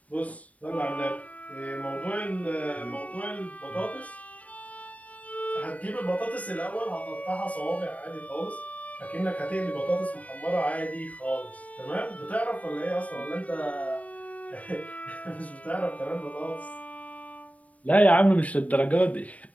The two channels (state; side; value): late; right; 0.067 ms